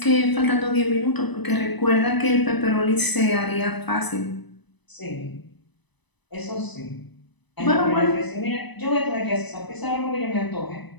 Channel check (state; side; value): late; right; 1.0 ms